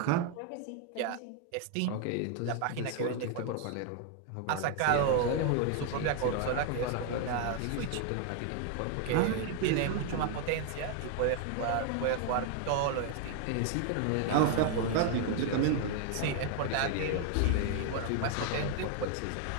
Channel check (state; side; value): different; both; correlation 0.00